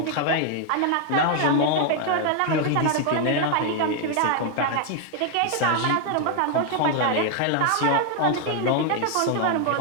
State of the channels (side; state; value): both; different; correlation 0.00